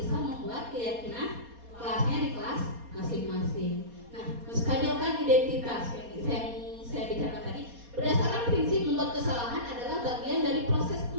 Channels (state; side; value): late; left; 4.2 ms